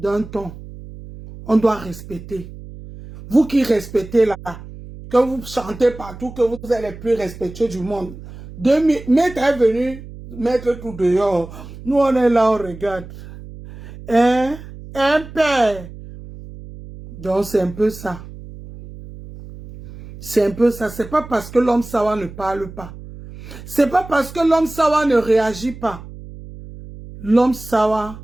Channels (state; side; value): noise; right; hum, 15 dB below the sound